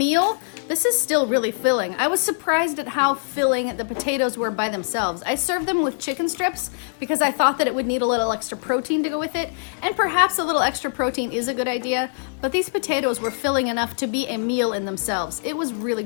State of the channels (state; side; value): silent; right; 63 dB below the other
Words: this is still really filling. I was surprised at how filling the potatoes were by themselves. I served them with chicken strips because I thought that it would need a little extra protein to go with it, and perhaps a little extra protein is a good idea, but these potatoes were filling enough to be a meal in themselves. It was really